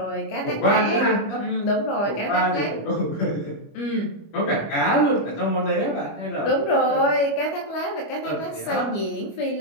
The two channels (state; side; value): late; right; 25 ms